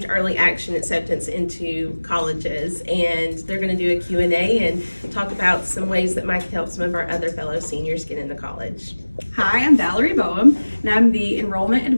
early action acceptance into colleges, and they're going to do a Q&A and talk about some ways that might help some of our other fellow seniors get into college. Hi, I'm Valerie Boehm, and I'm the enrollment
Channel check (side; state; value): both; inverted; correlation -1.00